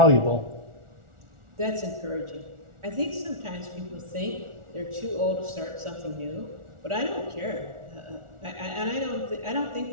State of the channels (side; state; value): left; late; 1.4 ms